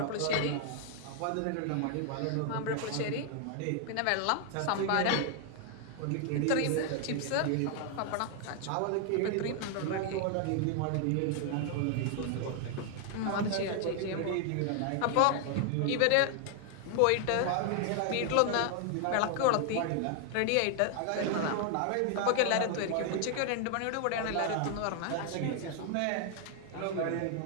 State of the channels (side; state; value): both; different; correlation 0.00